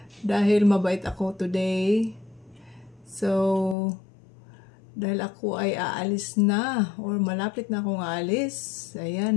Dahil mabait ako today. So, dahil ako ay aalis na. Or malapit na akong aalis.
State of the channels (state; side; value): drops out; right; at 3.8 s